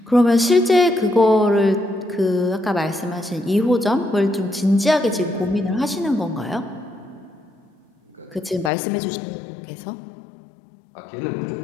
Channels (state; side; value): drops out; right; at 8.7 s